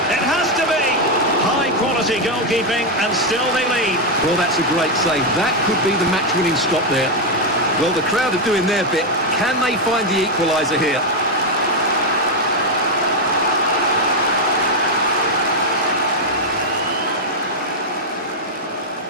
It has to be! High-quality goalkeeping, and still they lead. Well, that's a great save. That could be the match-winning stop there. Well, the crowd are doing their bit. Can they find the equaliser here?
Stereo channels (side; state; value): both; normal; correlation 0.03